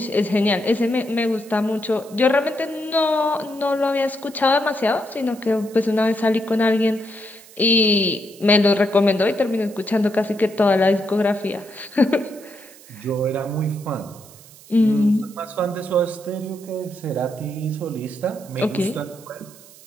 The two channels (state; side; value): noise; right; hiss, 22 dB below the sound